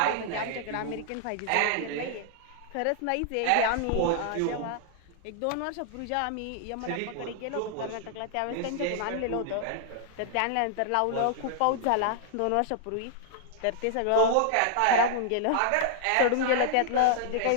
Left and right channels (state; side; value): different; both; correlation -0.01